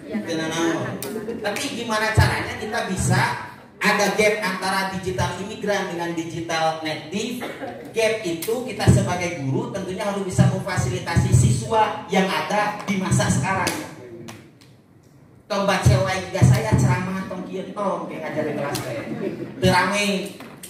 Teu nanaon. Tapi gimana caranya kita bisa ada gap antara digital imigran dengan digital native. Gap itu kita sebagai guru tentunya harus bisa memfasilitasi siswa yang ada di masa sekarang. Tong baca wae juga saya ceramah tong kieu tong kayak ngajar di kelas teh. Teu rame.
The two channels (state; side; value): identical; both; correlation 1.00